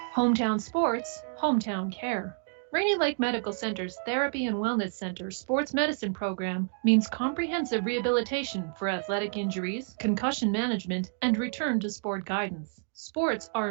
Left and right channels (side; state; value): left; silent; digital silence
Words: Hometown sports, hometown care. Rainy Lake Medical Center's Therapy and Wellness Center Sports Medicine Program means comprehensive rehabilitation for athletic injuries, concussion management, and return to sport guidance. Sports are